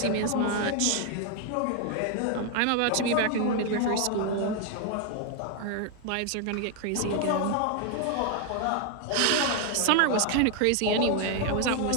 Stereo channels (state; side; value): different; both; correlation 0.00